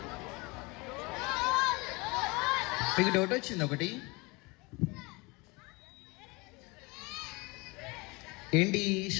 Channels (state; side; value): quieter; right; 25.9 dB